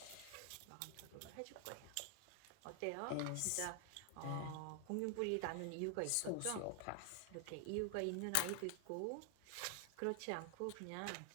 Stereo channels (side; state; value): both; different; correlation 0.00